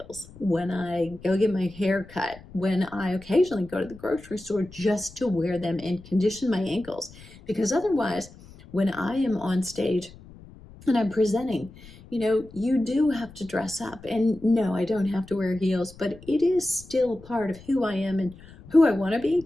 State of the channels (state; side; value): noise; left; rumble, 20 dB below the sound